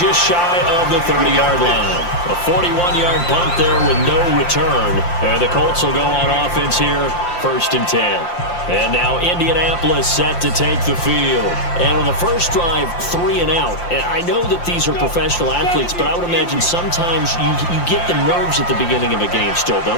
shy of the 30-yard line. A 41-yard punt there with no return. And the Colts will go on offense here, 1st and 10. And now Indianapolis set to take the field. And on the first drive, 3 and out. And I know that these are professional athletes, but I would imagine sometimes you get the nerves at the beginning of a game still,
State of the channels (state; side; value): late; right; 5.7 ms